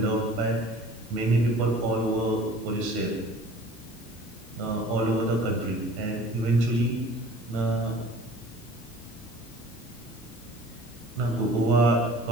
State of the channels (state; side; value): normal; both; correlation 0.47